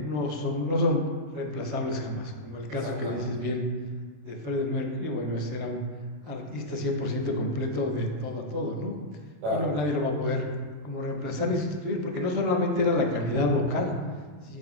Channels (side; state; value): left; late; 27 ms